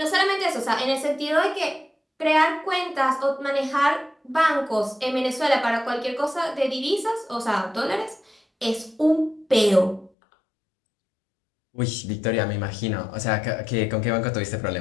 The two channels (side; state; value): right; drops out; at 10.1 s